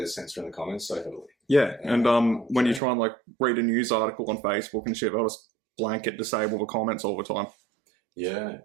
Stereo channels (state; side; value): drops out; left; at 2.8 s